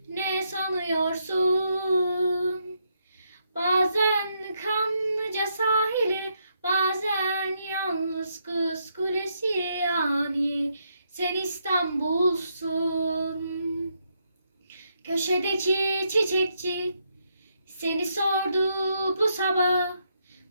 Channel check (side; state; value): both; inverted; correlation -0.77